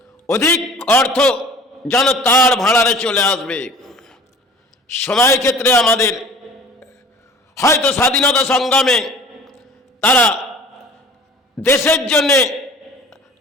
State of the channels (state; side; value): normal; both; correlation 0.45